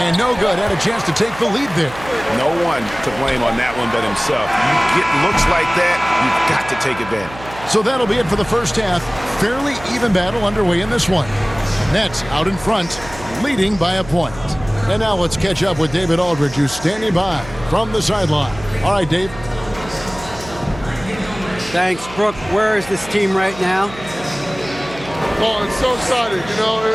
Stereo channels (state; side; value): noise; right; hum, 16 dB below the sound